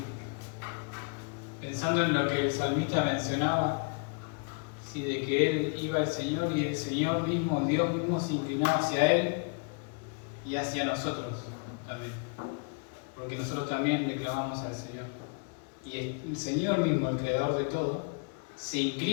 Pensando en lo que el salmista mencionaba, sí, de que él iba al Señor y el Señor mismo, Dios mismo, se inclinaba hacia él y hacia nosotros también. Porque nosotros también le clamamos al Señor. Y el Señor mismo, el creador de todo, se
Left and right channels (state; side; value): quieter; right; 37.4 dB